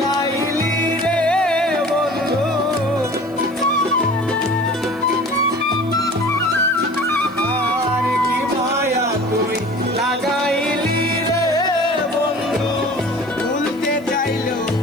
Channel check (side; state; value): left; noise; hiss, 28 dB below the sound